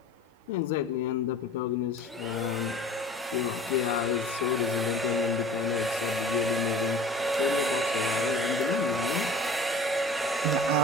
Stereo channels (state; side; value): normal; both; correlation 0.43